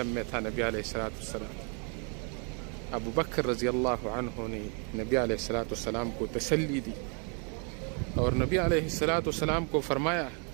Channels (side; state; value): left; quieter; 38.4 dB